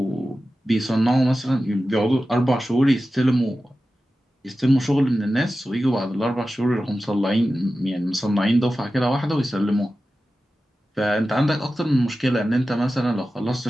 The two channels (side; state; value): both; normal; correlation 0.94